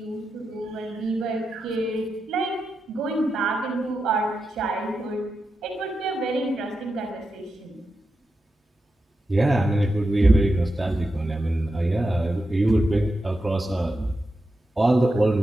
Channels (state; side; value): normal; both; correlation 0.89